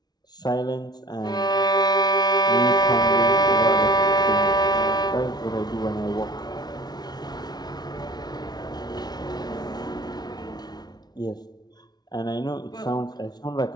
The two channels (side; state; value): right; late; 0.19 ms